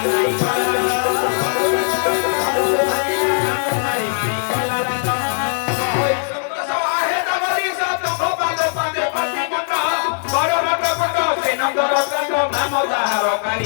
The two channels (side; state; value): right; silent; digital silence